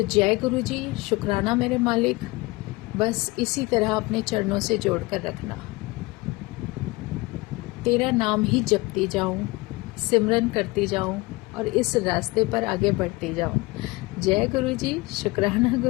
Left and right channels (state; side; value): quieter; right; 23.1 dB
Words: जय गुरु जी, शुक्राना मेरे मालिक। बस इसी तरह अपने चरणों से जोड़ कर रखना, तेरा नाम ही जपती जाऊं, सिमरन करती जाऊं, और इस रास्ते पर आगे बढ़ती जाऊं। जय गुरु जी, शुक्राना